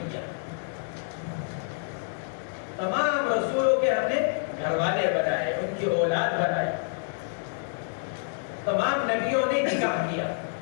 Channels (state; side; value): silent; right; digital silence